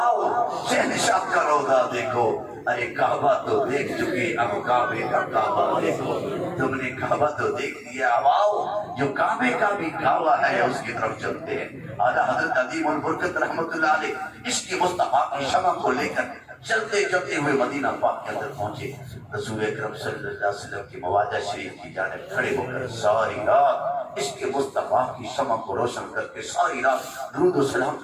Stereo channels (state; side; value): identical; both; correlation 1.00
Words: شہنشاہ کا روضہ دیکھو. ارے کعبہ تو دیکھ چکے، اب کعبے کا کعبہ دیکھو. تم نے کعبہ تو دیکھ لیا، اب آؤ جو کعبے کا بھی کعبہ ہے اس کی طرف چلتے ہیں. اعلیٰ حضرت عظیم البرکت رحمت اللہ علیہ عشق مصطفیٰ کی شمع کو لے کر چلتے چلتے ہوئے مدینہ پاک کے اندر پہنچے. رسول اکرم صلی اللہ علیہ وسلم کی مواجہ شریف کی جانب کھڑے ہو کر ساری رات عشق مصطفیٰ کی شمع کو روشن کر کے ساری رات درود و سلام